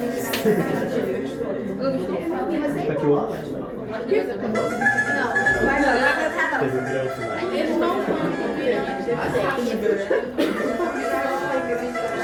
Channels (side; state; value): both; identical; correlation 1.00